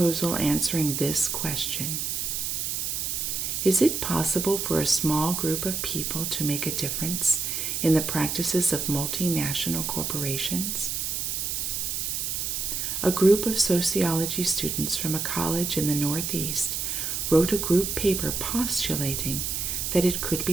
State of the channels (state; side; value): noise; right; hiss, 2 dB below the sound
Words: answering this question: is it possible for a small group of people to make a difference in the practices of multinational corporations? A group of sociology students from a college in the Northeast wrote a group paper postulating that it could